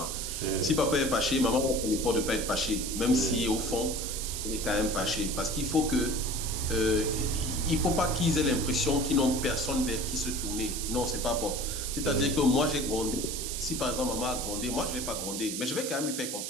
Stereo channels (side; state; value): right; noise; hiss, 4 dB below the sound